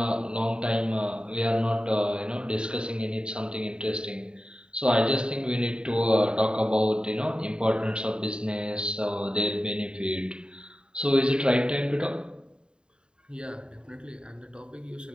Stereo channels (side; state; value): left; late; 0.049 ms